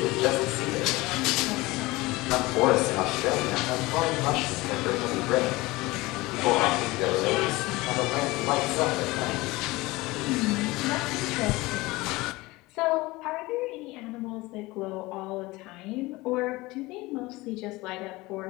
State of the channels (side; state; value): right; quieter; 21.0 dB